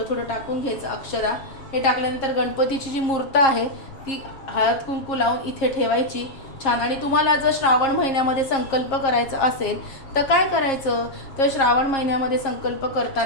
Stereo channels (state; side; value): late; right; 7.4 ms